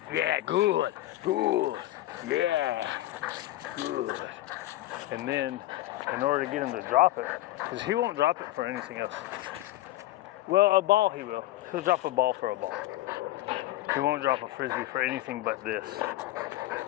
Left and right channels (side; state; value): right; quieter; 16.0 dB